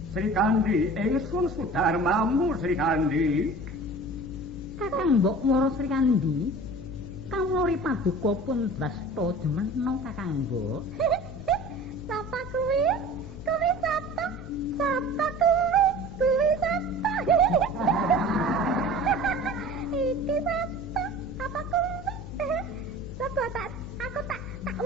Sri Kandi, ingsun sudarmamu Sri Kandi. Kakang mbok moro Sri Kandi. Kawula paduka pun drasta jemeno Kakang mbok. Sapa kuwi? Kuwi sapa? Sapa kuwi? Kuwi sapa? Iki sapa? Apa kuwi? Coba aku tak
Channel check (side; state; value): left; noise; hum, 12 dB below the sound